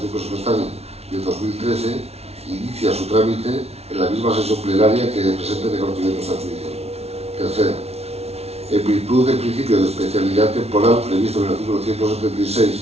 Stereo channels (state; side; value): late; left; 0.30 ms